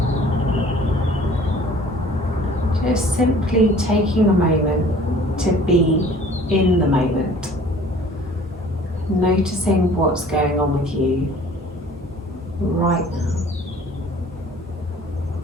Just simply taking a moment to be in the moment. Noticing what's going on with you right now.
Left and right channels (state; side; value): normal; both; correlation 0.51